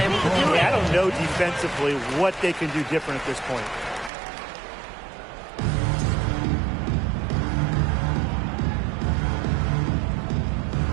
to do it. I don't know defensively what they can do different at this point.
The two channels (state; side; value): drops out; left; at 4.1 s